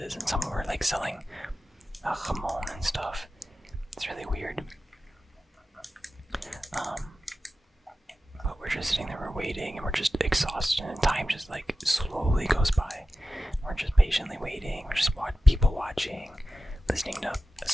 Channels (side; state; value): both; normal; correlation 0.94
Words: and some were, like, selling jamon and stuff. It's really weird. But we're just sitting there, we're waiting, and we're just exhausted, and time just, like, slowly goes by. We're just patiently waiting, we're just people watching, listening to